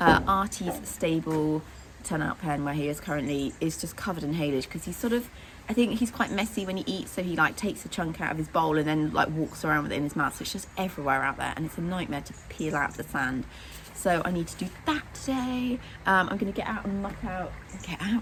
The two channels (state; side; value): identical; both; correlation 1.00